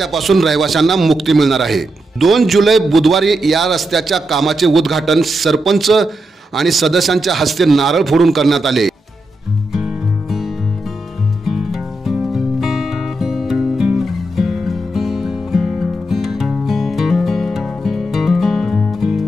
रहिवाशांना मुक्ती मिळणार आहे। 2 जुलै बुधवारी या रस्त्याच्या कामाचे उद्घाटन सरपंच आणि सदस्यांच्या हस्ते नारळ फोडून करण्यात आले।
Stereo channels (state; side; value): normal; both; correlation 0.85